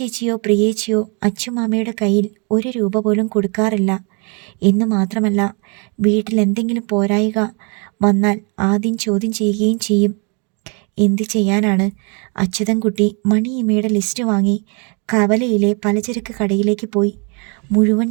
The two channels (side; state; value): left; quieter; 35.5 dB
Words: പ്രിയേച്ചിയോ അച്ഛമാമയുടെ കയ്യിൽ 1 രൂപ പോലും കൊടുക്കാറില്ല എന്ന് മാത്രമല്ല, വീട്ടിൽ എന്തെങ്കിലും പോരായിക വന്നാൽ ആദ്യം ചോദ്യം ചെയ്യുകയും ചെയ്യും. എന്ത് ചെയ്യാനാണ്? അച്യുതൻകുട്ടി മണിയമ്മയുടെ ലിസ്റ്റ് വാങ്ങി കവലയിലെ പലചരക്ക് കടയിലേക്ക് പോയി. മുഴുവൻ